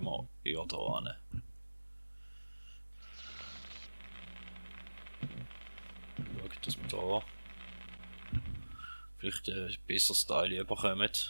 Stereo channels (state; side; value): inverted; both; correlation -1.00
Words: wir eher da hin. Schauen, dass wir da vielleicht ein besseres Teil bekommen.